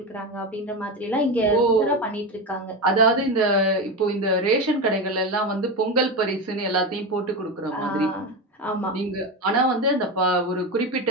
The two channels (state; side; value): normal; both; correlation 0.18